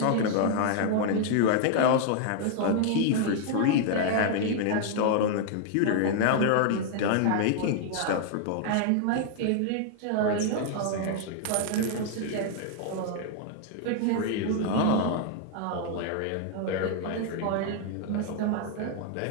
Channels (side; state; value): both; different; correlation 0.00